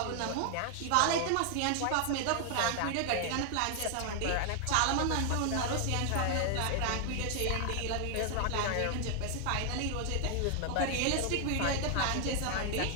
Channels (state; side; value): different; both; correlation 0.00